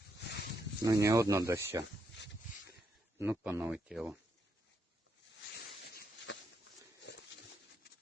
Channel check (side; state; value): both; normal; correlation 0.78